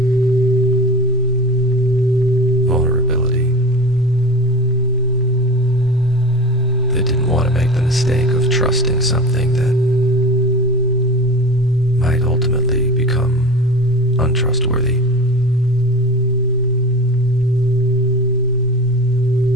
vulnerability, that didn't want to make the mistake of trusting something that might ultimately become untrustworthy.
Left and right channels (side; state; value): both; normal; correlation 0.31